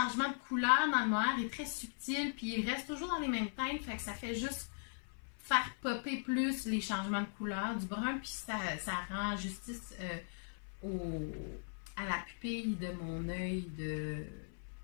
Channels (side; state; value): right; silent; 52 dB below the other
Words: de couleur dans le mohair est très subtil, puis il reste toujours dans les mêmes teintes, fait que ça fait juste faire popper plus les changements de couleur du brun, puis ça rend justice à la pupille de mon œil du